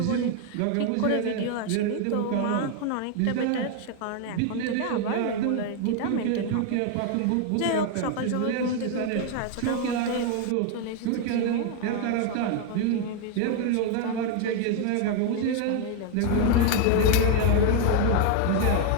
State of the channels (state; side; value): different; both; correlation 0.00